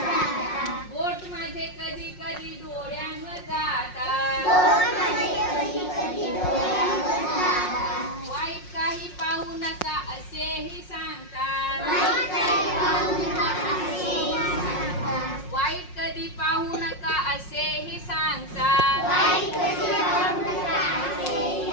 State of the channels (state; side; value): late; right; 5.5 ms